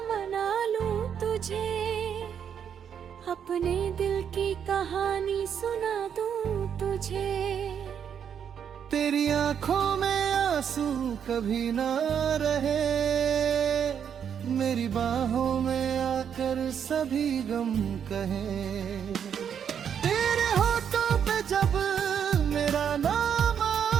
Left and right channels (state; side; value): quieter; left; 8.1 dB